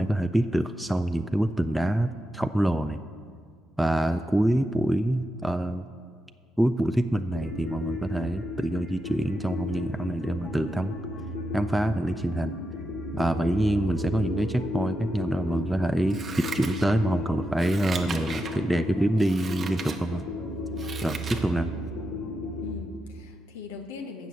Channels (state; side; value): normal; both; correlation 0.87